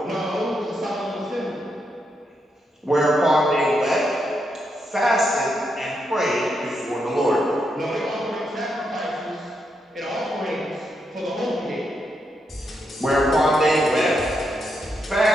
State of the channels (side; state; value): both; normal; correlation 0.81